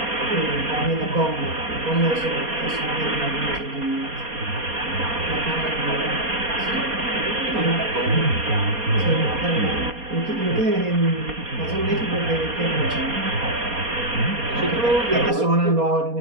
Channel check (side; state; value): left; late; 4.2 ms